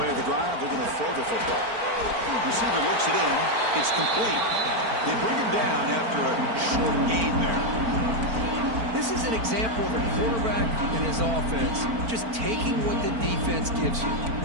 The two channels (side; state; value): left; late; 4.4 ms